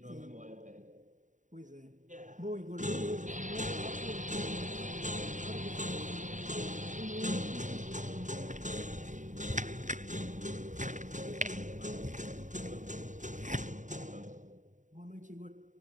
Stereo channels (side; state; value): left; late; 0.36 ms